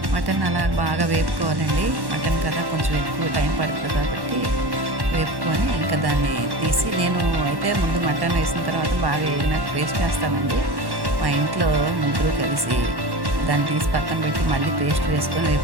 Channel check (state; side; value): late; left; 1.1 ms